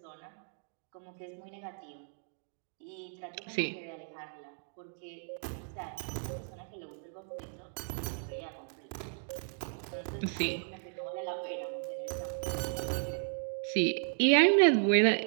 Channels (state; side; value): silent; left; 55 dB below the other